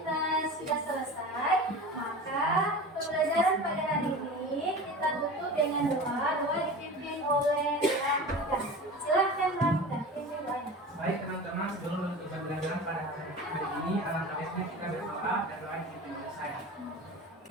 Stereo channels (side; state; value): both; normal; correlation 0.34